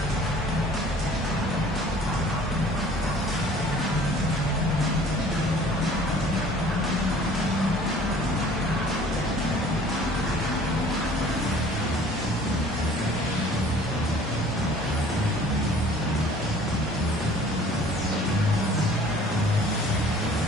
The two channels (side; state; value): both; normal; correlation 0.51